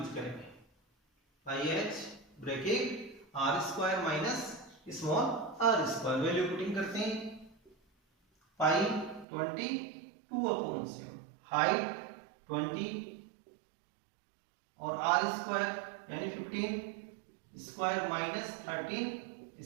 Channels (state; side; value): drops out; left; at 9.2 s